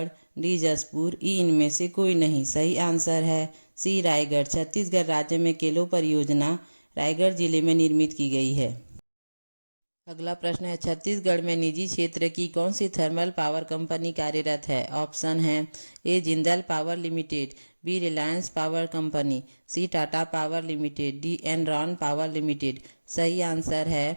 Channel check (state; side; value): inverted; both; correlation -1.00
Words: डी जसपुर, ई इनमें से कोई नहीं। सही आंसर है सी रायगढ़। छत्तीसगढ़ राज्य में केलो परियोजना रायगढ़ जिले में निर्मित की गई है। अगला प्रश्न है, छत्तीसगढ़ में निजी क्षेत्र की कौन सी थर्मल पावर कंपनी कार्यरत है? ऑप्शन है A Jindal power limited, B Reliance power company, C Tata power limited, D Enron power limited. सही आंसर